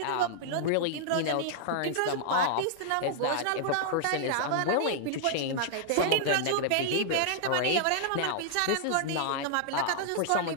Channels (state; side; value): different; both; correlation -0.01